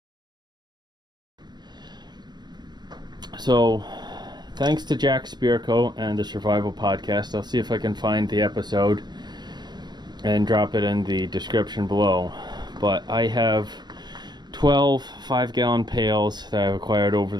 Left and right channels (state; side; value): late; left; 0.21 ms